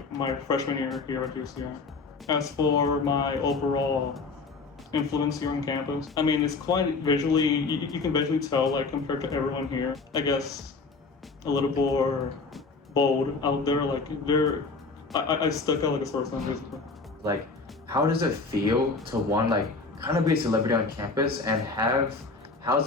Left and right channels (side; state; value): right; quieter; 4.1 dB